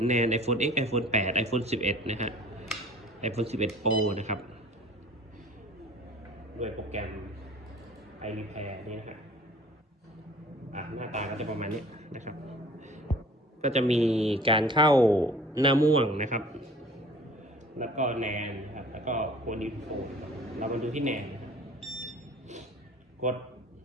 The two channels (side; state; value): both; normal; correlation 0.48